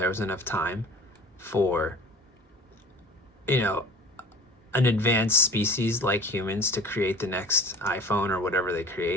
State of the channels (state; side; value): normal; both; correlation 0.43